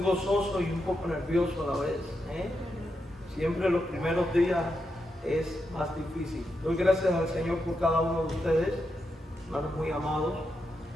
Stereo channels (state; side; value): normal; both; correlation 0.85